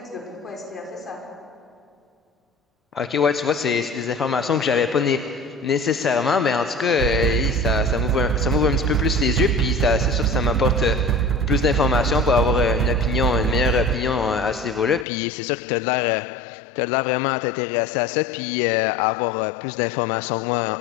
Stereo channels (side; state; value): right; drops out; at 15.1 s